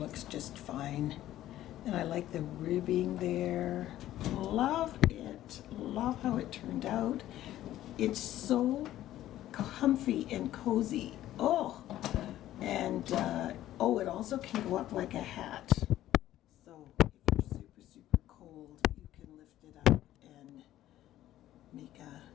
just fine. And I like the ribbing there. Love it. Love how it turned out. It's so comfy and cozy. Oh, and it also can go up like a hat. So if you're super, super cold, you can lift it up and make a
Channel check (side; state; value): right; quieter; 13.6 dB